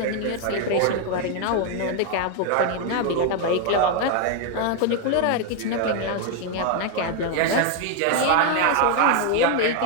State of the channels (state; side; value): different; both; correlation 0.01